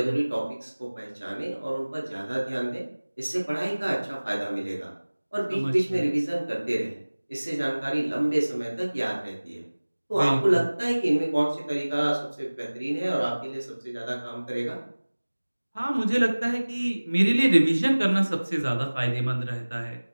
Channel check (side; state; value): both; inverted; correlation -1.00